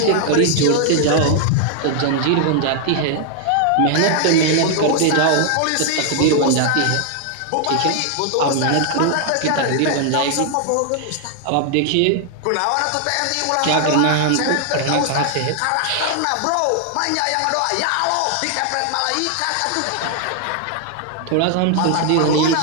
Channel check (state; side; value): different; both; correlation 0.00